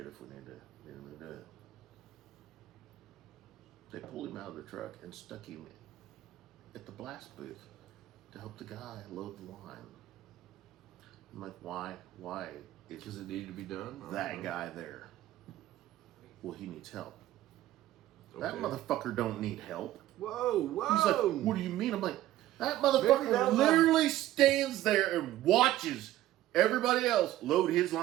if we need him to do it. They pulled him out of the truck and stuck him at the blast booth to help the guy load the line. I'm like, why? Why is because it needed to be done. that guy there? Well, he needs help. Okay. That motherfucker don't need help. Whoa! He's like, what do you mean? I'm like, that Maybe motherfucker that literally stands there and watches everybody else load his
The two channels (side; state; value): left; quieter; 14.5 dB